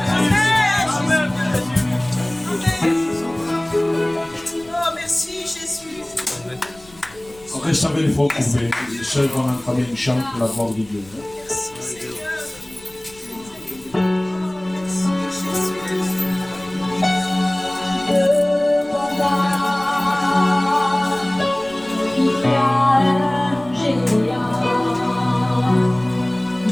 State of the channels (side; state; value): left; noise; rumble, 25 dB below the sound